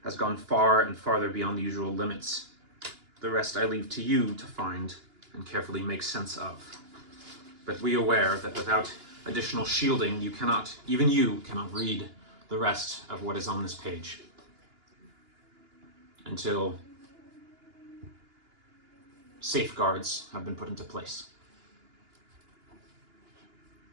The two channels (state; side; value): late; left; 2.9 ms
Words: has gone far and farther beyond the usual limits. The rest I leave to you to find and carefully make sense of. But be aware that without additional shielding, even you cannot read the rest of what is on this page. Until safeguards have been put into place.